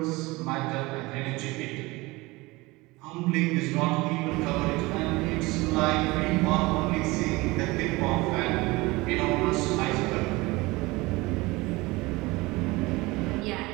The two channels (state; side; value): quieter; left; 22.2 dB